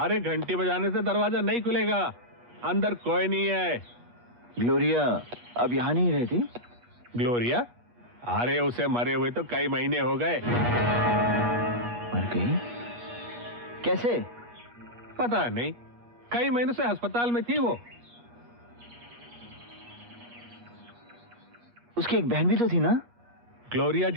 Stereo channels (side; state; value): left; late; 8.4 ms